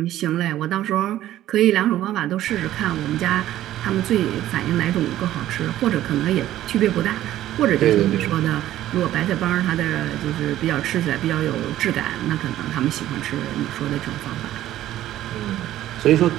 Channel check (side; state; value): left; quieter; 13.5 dB